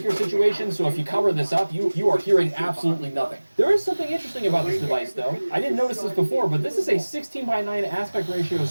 situation, so if you cover this up, you are hearing absolutely nothing. There is something interesting about this device, though. I didn't notice this before, but this is a 16:9 aspect ratio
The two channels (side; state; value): both; inverted; correlation -1.00